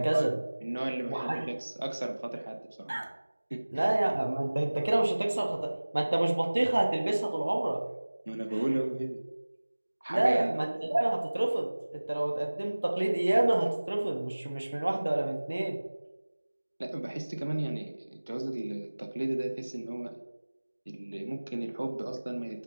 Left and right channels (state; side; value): inverted; both; correlation -1.00